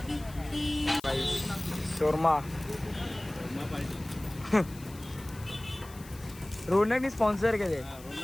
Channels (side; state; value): left; noise; hiss, 20 dB below the sound